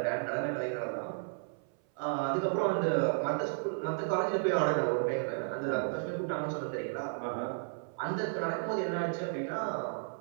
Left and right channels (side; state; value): left; silent; 56 dB below the other